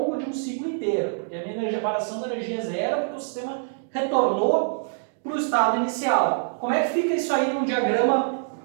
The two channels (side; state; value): left; silent; digital silence